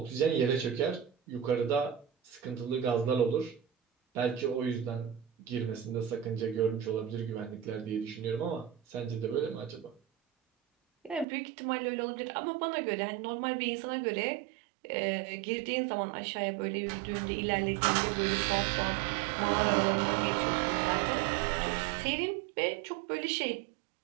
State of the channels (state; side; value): drops out; left; at 11.2 s